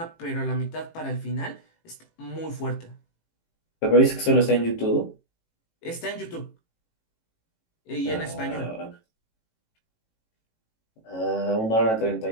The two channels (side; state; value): right; late; 18 ms